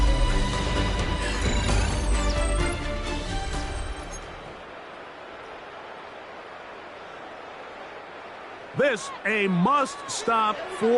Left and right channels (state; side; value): identical; both; correlation 1.00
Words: This a must stop